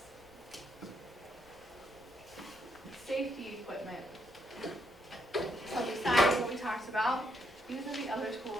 Safety equipment. So besides what we talked about, these are the other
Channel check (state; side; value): normal; both; correlation 0.76